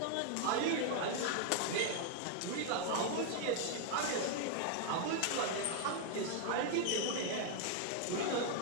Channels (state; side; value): different; both; correlation 0.00